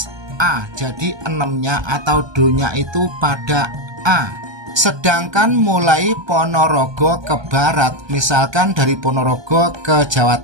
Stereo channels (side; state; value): left; late; 1.2 ms